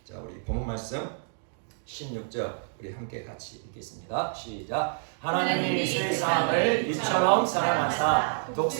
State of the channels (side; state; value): left; silent; digital silence